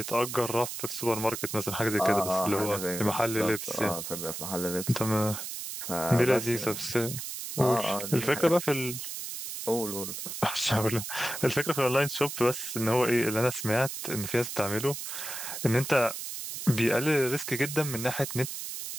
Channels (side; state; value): right; noise; hiss, 7 dB below the sound